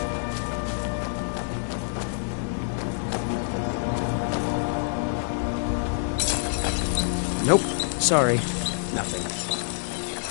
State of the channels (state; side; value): silent; right; digital silence